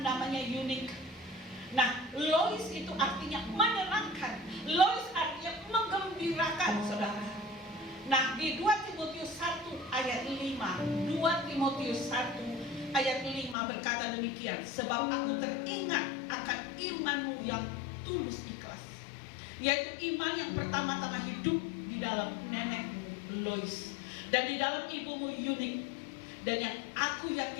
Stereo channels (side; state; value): right; drops out; at 13.6 s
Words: namanya Eunike. Nah, Lois itu artinya menyenangkan. Lois artinya menggembirakan, saudara. Nah, di 2 Timotius 1 ayat 5, 2 Timotius 1 ayat 5 berkata demikian, sebab aku teringat akan imanmu yang tulus ikhlas, yaitu iman yang pertama-tama hidup di dalam nenekmu Lois dan di dalam ibumu Eunike, dan yang aku